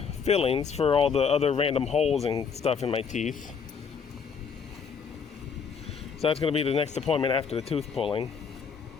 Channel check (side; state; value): right; quieter; 6.3 dB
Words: fillings for all the other random holes and stuff in my teeth. So that's going to be the next appointment after the tooth pulling.